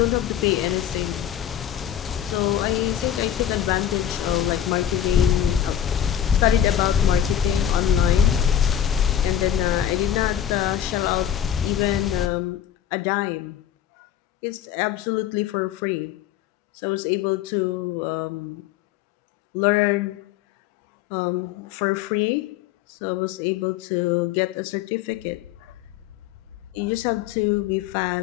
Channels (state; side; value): quieter; right; 10.3 dB